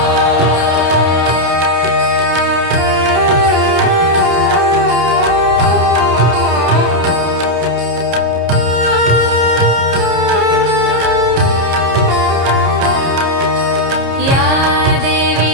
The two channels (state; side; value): late; left; 30 ms